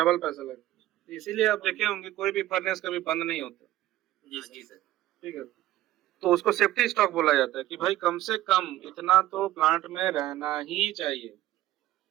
पैसा लगता है। इसीलिए आप देखे होंगे कोई भी फर्नेस कभी बंद नहीं होता। जी हाँ जी सर। सर। ठीक है, तो उसको सेफ्टी स्टॉक बोला जाता है कि भाई कम से कम इतना तो प्लांट में रहना ही चाहिए।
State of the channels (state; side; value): quieter; left; 14.9 dB